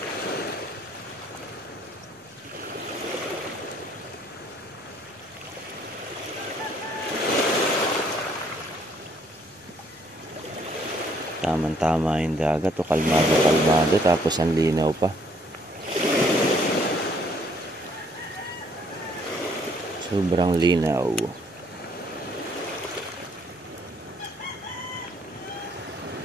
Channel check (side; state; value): both; normal; correlation 0.65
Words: Tama yung dagat. Kalmado. Tapos ang linaw pa. Sobrang linaw.